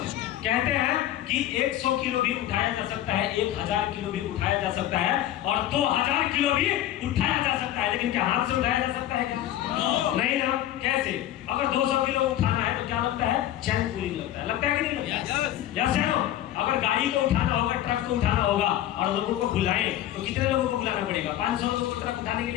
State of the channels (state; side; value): quieter; right; 12.8 dB